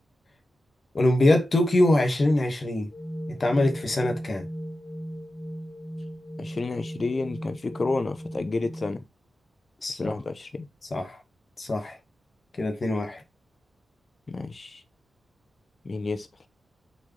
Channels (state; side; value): normal; both; correlation 0.93